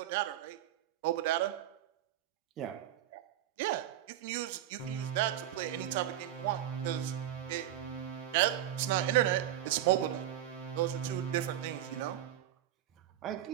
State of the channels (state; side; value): quieter; left; 12.0 dB